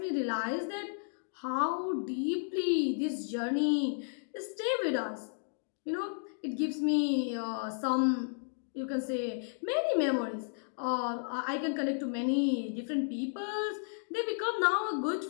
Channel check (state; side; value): silent; right; digital silence